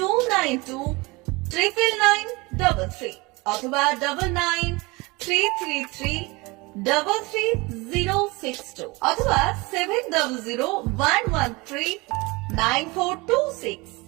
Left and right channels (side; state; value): left; quieter; 24.6 dB